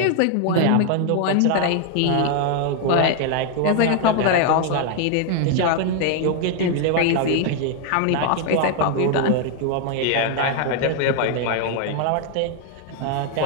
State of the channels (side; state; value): both; different; correlation 0.00